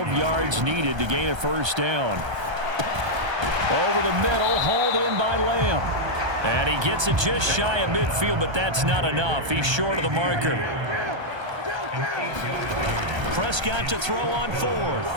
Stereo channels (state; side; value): late; left; 1.3 ms